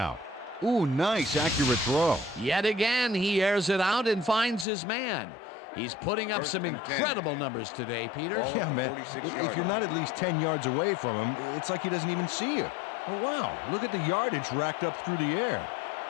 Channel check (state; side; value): drops out; right; at 4.7 s